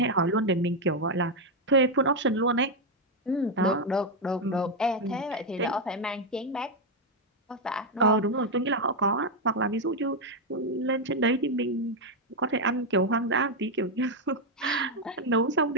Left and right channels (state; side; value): normal; both; correlation 0.03